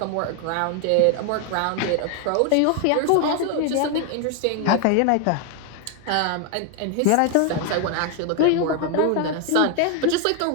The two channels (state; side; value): different; both; correlation 0.01